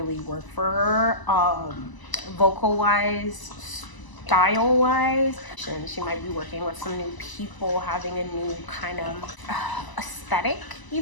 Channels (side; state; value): right; late; 1.0 ms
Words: work for her, vocal wise, style wise. And she might be working with some new people, having a new kind of aesthetic